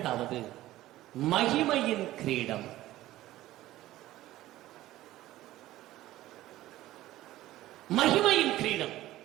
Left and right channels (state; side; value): quieter; left; 15.5 dB